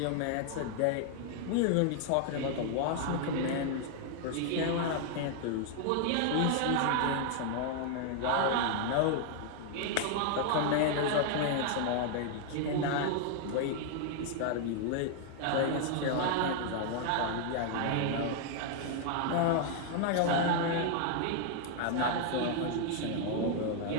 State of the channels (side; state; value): both; different; correlation 0.00